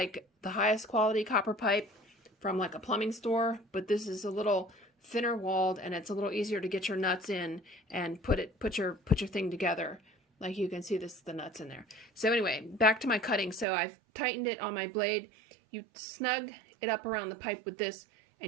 the highest quality copper pipe from like a plumbing store, but this is a little thinner walled, and it's a little easier to get your nuts in and put your thing together. Like you can see the nuts in there. So anyway, back to my cutting. So I've tightened it on my blade. You snug it up around the pipe with this,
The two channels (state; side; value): drops out; left; at 13.7 s